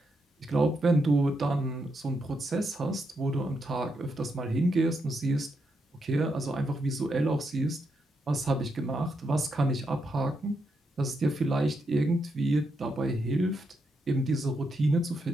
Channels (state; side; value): normal; both; correlation 0.81